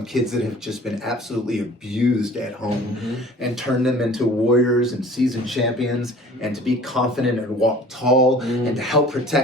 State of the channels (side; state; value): both; normal; correlation 0.47